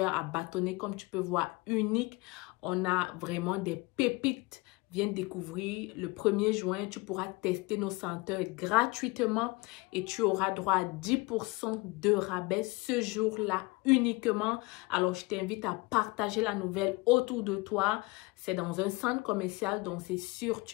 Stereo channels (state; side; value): quieter; right; 24.4 dB